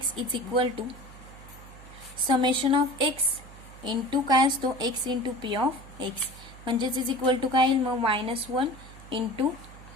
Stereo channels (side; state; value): right; noise; hum, 18 dB below the sound